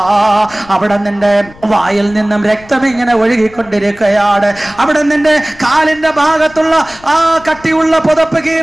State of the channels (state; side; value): noise; left; rumble, 23 dB below the sound